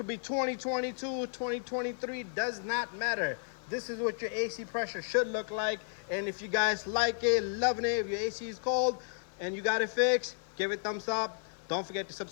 be 2022, 2023, does not matter. This is what your AC pressure should look like. And if you guys like it, loving it, if your AC is cold and you got it fixed, give it a thumbs up. Don't forget to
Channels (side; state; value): right; silent; 56 dB below the other